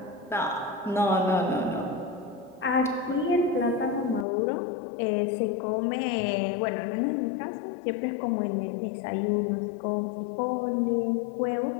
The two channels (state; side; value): drops out; right; at 4.2 s